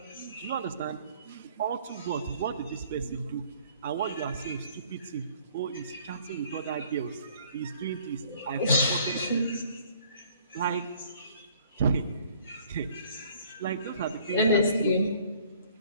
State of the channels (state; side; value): inverted; both; correlation -0.57